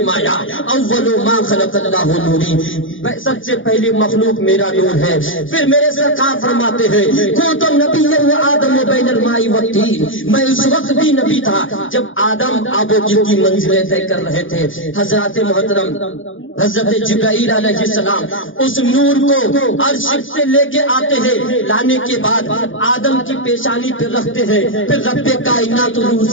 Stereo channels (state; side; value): late; right; 0.57 ms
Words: اول ما خلق اللہ نوری، سب سے پہلی مخلوق میرا نور ہے. پھر میرے سرکار فرماتے ہیں کنت نبیا و آدم بین الماء والطین، میں اس وقت بھی نبی تھا جب آدم آب و گل کی منزلیں طے کر رہے تھے. حضرات محترم حضرت جبرائیل علیہ السلام اس نور کو عرش سے لے کے آتے ہیں، لانے کے بعد آدم کی پیشانی پہ رکھتے ہیں. پھر رب کائنات روح